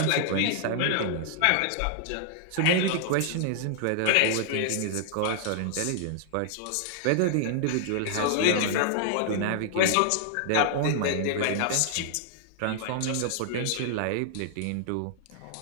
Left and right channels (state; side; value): different; both; correlation -0.01